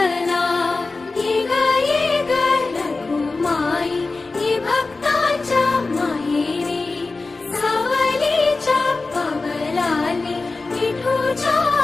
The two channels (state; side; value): quieter; right; 3.7 dB